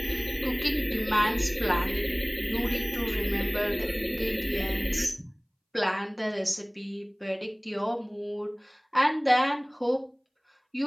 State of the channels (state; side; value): identical; both; correlation 1.00